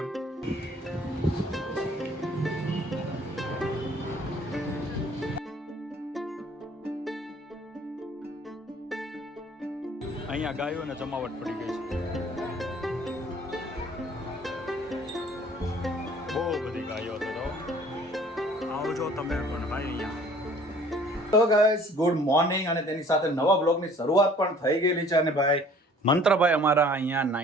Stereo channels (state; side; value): normal; both; correlation 0.53